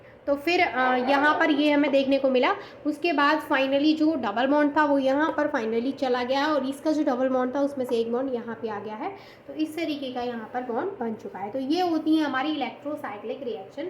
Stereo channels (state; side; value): identical; both; correlation 1.00